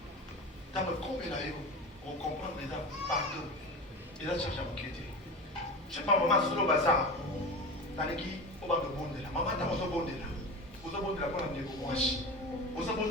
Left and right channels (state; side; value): normal; both; correlation 0.28